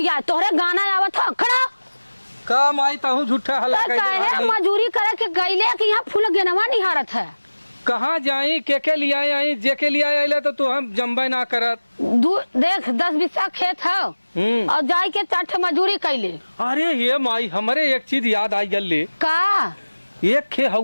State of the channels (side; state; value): both; inverted; correlation -1.00